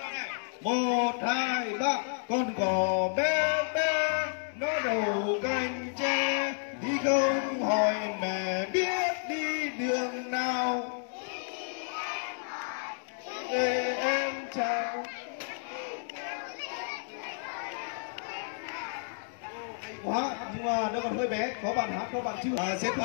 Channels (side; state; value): right; silent; 57 dB below the other